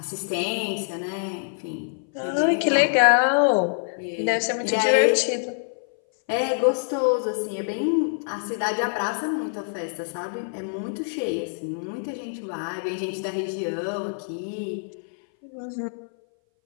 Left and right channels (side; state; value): right; silent; 59 dB below the other